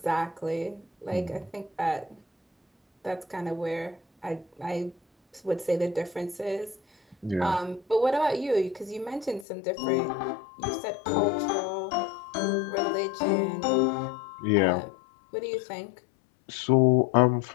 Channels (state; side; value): drops out; right; at 9.5 s